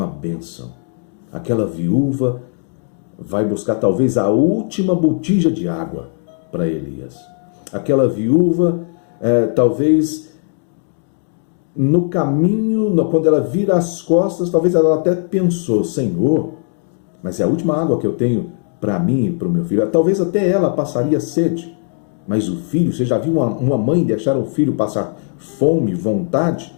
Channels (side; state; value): right; silent; 60 dB below the other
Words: bênção. Aquela viúva vai buscar talvez a última botija de água para Elias. Aquela viúva, talvez no caminho, quando ela vira as costas, talvez ela até pensou, Senhor, mas é a última água que eu tenho para mim e para o meu filho. Talvez até ela passaria sede, mas o filho, você já viu uma mãe deixar o filho passar fome, vontade?